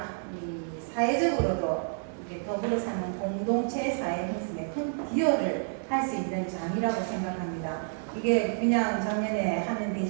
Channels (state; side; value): silent; left; 58 dB below the other